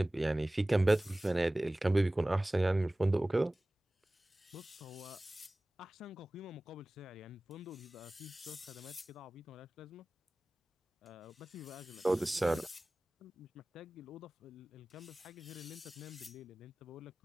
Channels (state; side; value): normal; both; correlation 0.98